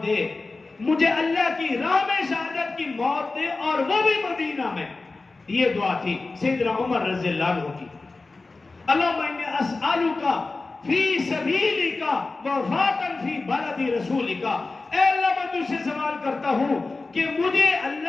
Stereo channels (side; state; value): right; quieter; 3.6 dB